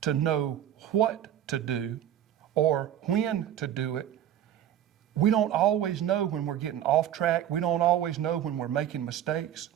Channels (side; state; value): left; quieter; 10.9 dB